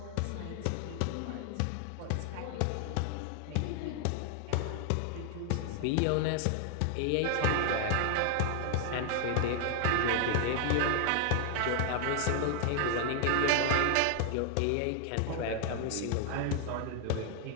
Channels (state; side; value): different; both; correlation 0.00